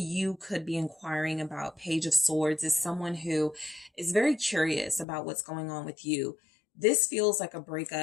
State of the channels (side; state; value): right; drops out; at 5.1 s